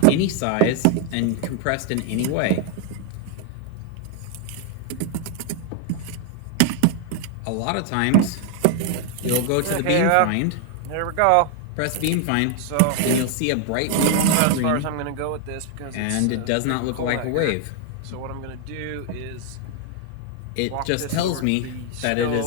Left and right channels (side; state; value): both; different; correlation 0.00